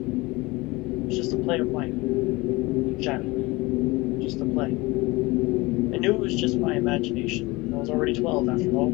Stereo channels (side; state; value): right; quieter; 22.6 dB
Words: It was just a play of light. Shadow. Just a play. I knew it was just my imagination. I was already 12 after